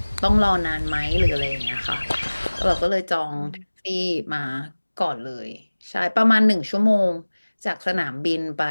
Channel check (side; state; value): both; inverted; correlation -1.00